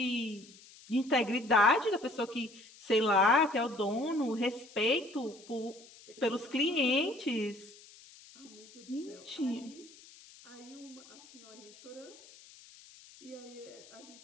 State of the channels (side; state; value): left; noise; hiss, 22 dB below the sound